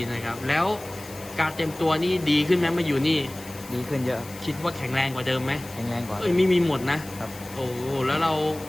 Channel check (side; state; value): left; noise; hiss, 17 dB below the sound